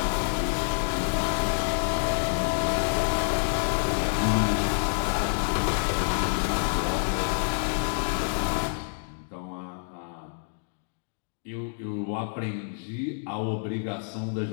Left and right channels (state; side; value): silent; right; digital silence